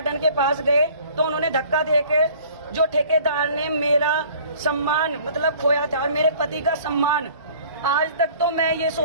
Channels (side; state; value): both; inverted; correlation -0.50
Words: के पास गए, तो उन्होंने धक्का दे के, जो ठेकेदार ने मेरा सम्मान मतलब खोया था और मेरे पति का सम्मान, आज तक तो मैं ये